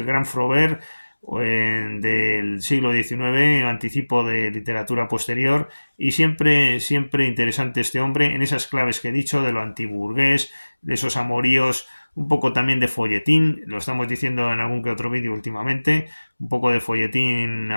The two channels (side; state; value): both; inverted; correlation -1.00